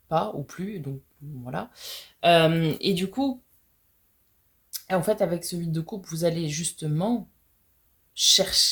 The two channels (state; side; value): identical; both; correlation 1.00